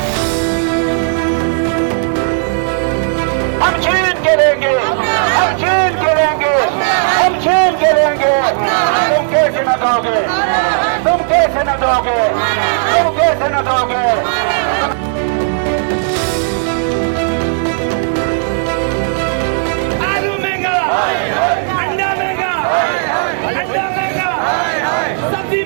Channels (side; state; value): left; silent; digital silence